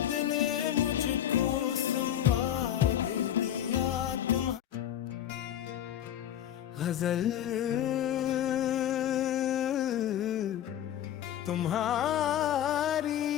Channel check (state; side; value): quieter; right; 10.8 dB